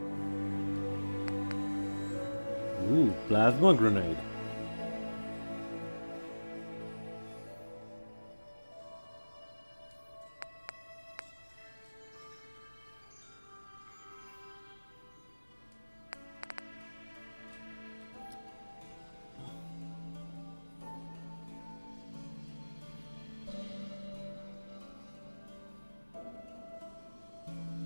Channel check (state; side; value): inverted; both; correlation -1.00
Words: Ooh, plasma grenade.